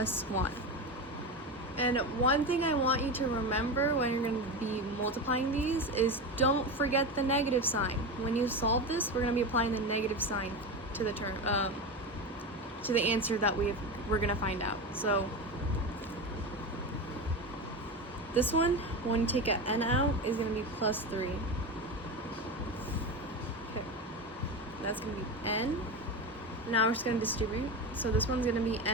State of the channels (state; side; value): normal; both; correlation 0.21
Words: 1. And one thing I want you to remember when you're going to be multiplying these is don't forget the negative sign. When you solve this, we're going to be applying the negative sign to the term, to the answer that we're going to find out. So this one, when you take an n out, is going to be plus 3. Okay, that's going to be n. Now we're just going to distribute. So this one's going to be